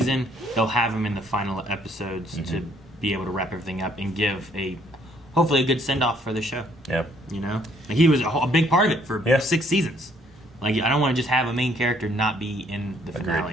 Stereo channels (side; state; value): both; normal; correlation 0.65